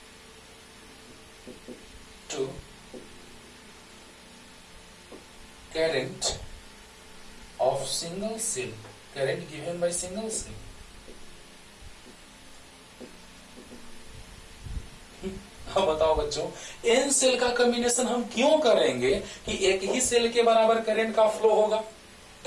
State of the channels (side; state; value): both; identical; correlation 1.00